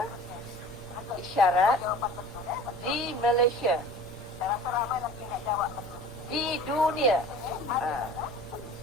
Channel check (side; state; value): both; normal; correlation 0.43